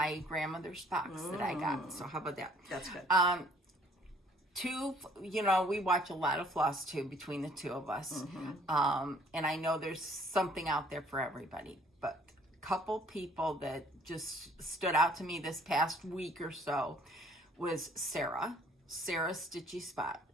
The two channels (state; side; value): normal; both; correlation 0.59